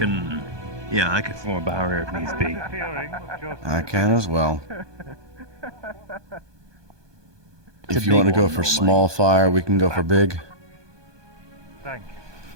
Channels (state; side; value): late; left; 1.2 ms